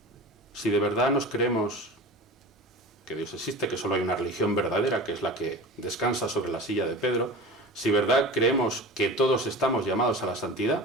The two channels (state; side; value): normal; both; correlation 0.34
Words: Si de verdad nos creemos que Dios existe, que solo hay una religión verdadera, que es la que descansa sobre la silla de Pedro, si de verdad creemos que todos estamos llamados a la